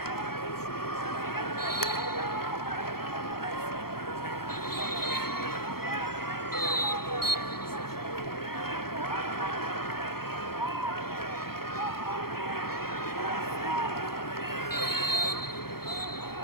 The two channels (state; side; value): late; right; 0.94 ms